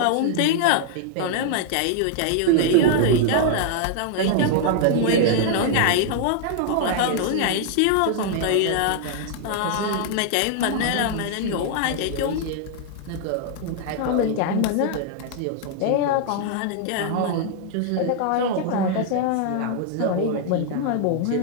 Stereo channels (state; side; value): different; both; correlation 0.00